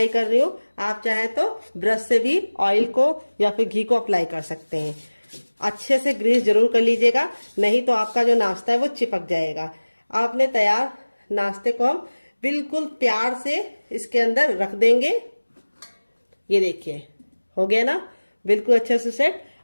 कर रही हूँ, आप चाहे तो ब्रश से भी ऑयल को या फिर घी को अप्लाई कर सकते हैं। अच्छे से ग्रीस जरूर कर लीजिएगा, नहीं तो आपका जो नाश्ता है वो चिपक जाएगा। आपने तैयार नाश्ते को हम बिल्कुल प्यार से इसके अंदर रख देंगे। ये देखिए, हो गया ना बिल्कुल अच्छे से सेट।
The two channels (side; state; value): both; inverted; correlation -1.00